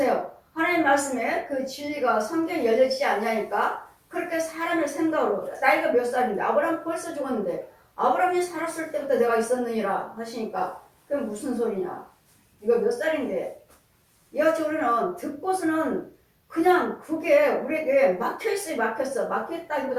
하나님 말씀에 그 진리가 성경에 열려지지 않냐니까 그렇게 사람의 생각으로 나이가 몇 살인데 아브라함 벌써 죽었는데 아브라함이 살았을 때부터 내가 있었느니라 하시니까 그게 무슨 소리냐. 네가 몇 살인데. 이같이 우리는 듣고서는 그냥 그게 우리에게 막혀있어요.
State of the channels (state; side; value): identical; both; correlation 1.00